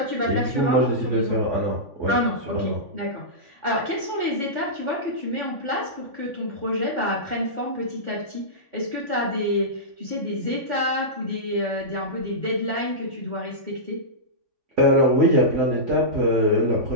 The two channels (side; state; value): left; late; 3.5 ms